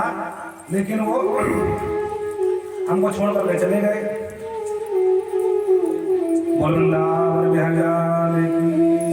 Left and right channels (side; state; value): both; identical; correlation 1.00